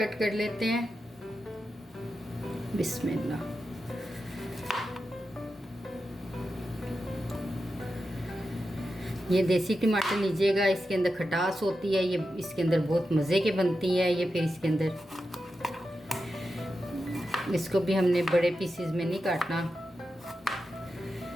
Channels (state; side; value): normal; both; correlation 0.90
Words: कर लेते हैं। बिस्मिल्लाह। ये देसी टमाटर लीजिएगा, इसके अंदर खटास होती है, ये इसके अंदर बहुत मज़े के बनती है। ये फिर इसके अंदर इसको भी हमने बड़े पीसेस में नहीं काटना,